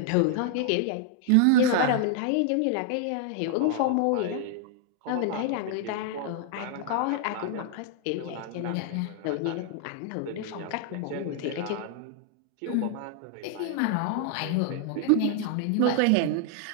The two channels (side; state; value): both; different; correlation 0.00